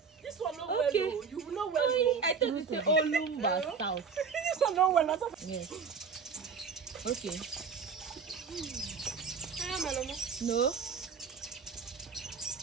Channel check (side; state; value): left; quieter; 5.7 dB